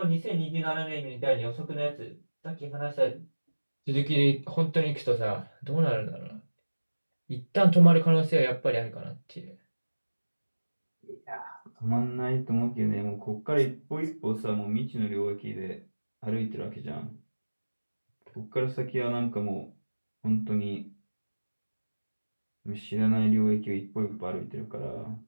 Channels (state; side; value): inverted; both; correlation -1.00